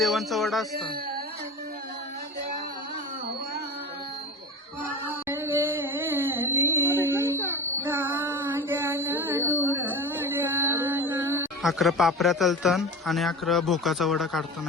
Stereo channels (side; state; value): both; normal; correlation 0.31